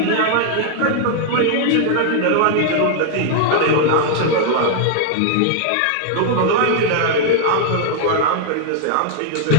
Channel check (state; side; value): different; both; correlation 0.00